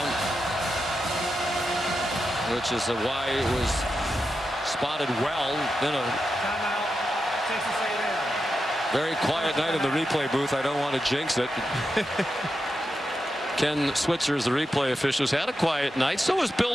which is why it was spotted well. Then a very quiet night in the replay booth. I don't want to jinx it. Ken Switzer, the replay officials, had a quiet night. So is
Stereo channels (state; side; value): normal; both; correlation 0.88